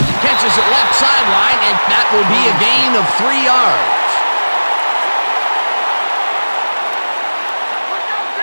Catches it left sideline, and that will be a gain of 3 yards.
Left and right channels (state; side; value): inverted; both; correlation -1.00